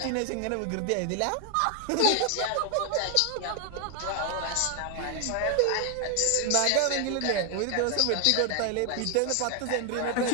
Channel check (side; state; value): both; different; correlation 0.01